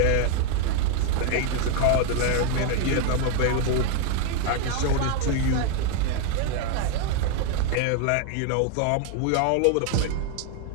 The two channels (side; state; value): both; different; correlation 0.01